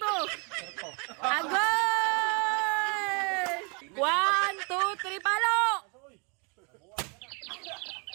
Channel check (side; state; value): left; quieter; 33.9 dB